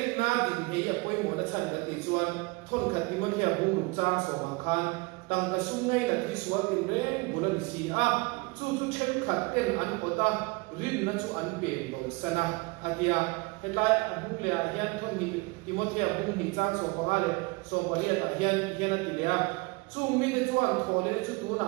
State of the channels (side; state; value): left; quieter; 26.7 dB